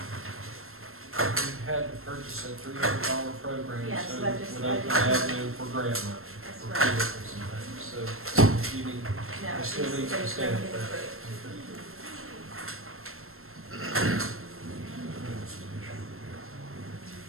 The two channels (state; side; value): late; left; 0.62 ms